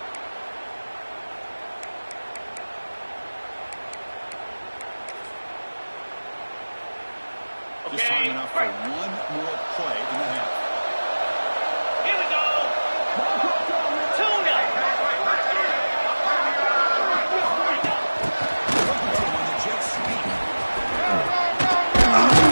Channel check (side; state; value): both; inverted; correlation -1.00